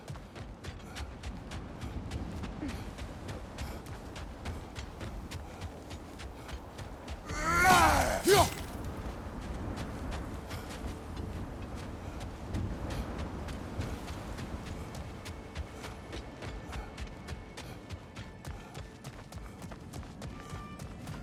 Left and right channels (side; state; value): both; identical; correlation 1.00